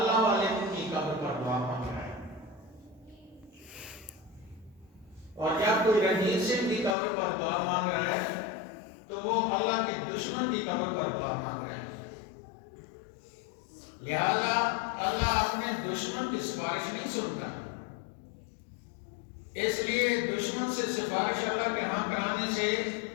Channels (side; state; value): right; drops out; at 7.0 s